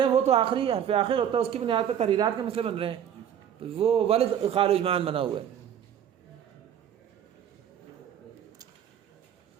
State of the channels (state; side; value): quieter; left; 9.4 dB